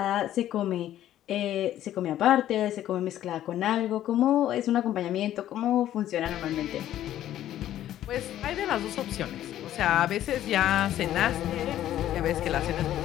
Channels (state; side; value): quieter; right; 12.4 dB